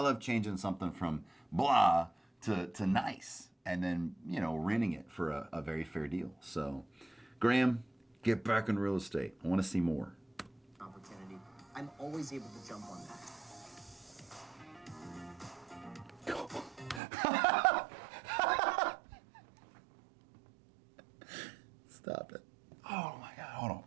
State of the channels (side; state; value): left; drops out; at 17.0 s